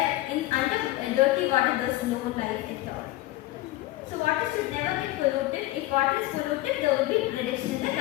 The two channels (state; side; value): quieter; right; 17.5 dB